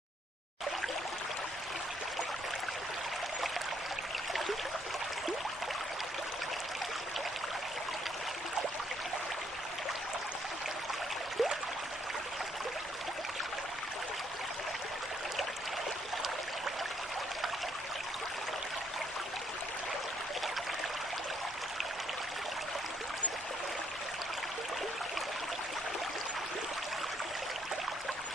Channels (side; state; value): both; normal; correlation 0.71